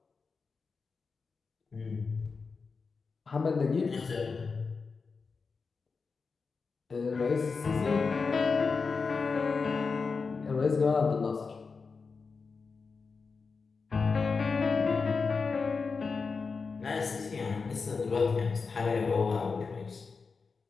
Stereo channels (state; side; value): quieter; right; 4.8 dB